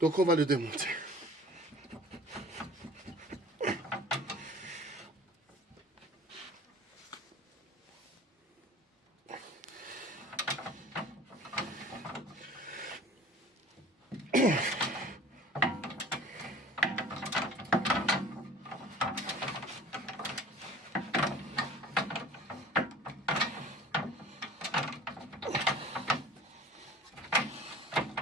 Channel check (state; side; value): normal; both; correlation 0.45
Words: on va le démonter.